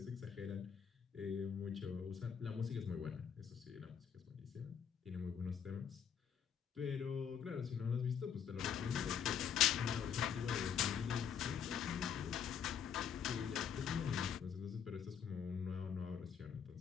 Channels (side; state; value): right; quieter; 7.9 dB